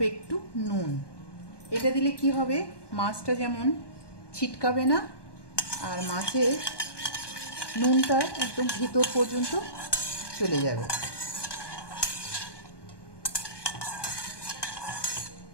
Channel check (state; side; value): late; right; 1.2 ms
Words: একটু নুন। এটা দিলে কি হবে, মাছটা যেমন ছিটকাবে না আর মাছের নুনটা একদম ভিতর পর্যন্ত চলে যাবে।